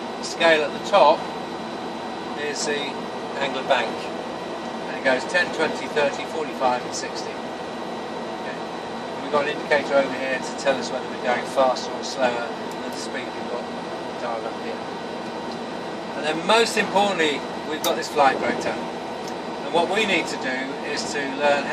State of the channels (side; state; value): both; identical; correlation 1.00